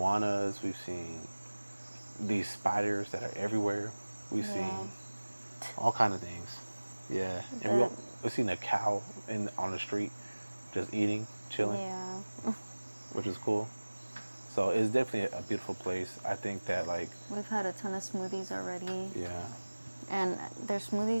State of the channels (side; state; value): both; inverted; correlation -1.00